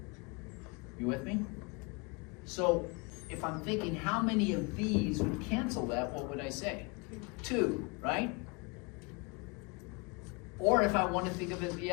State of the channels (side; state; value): right; quieter; 29.6 dB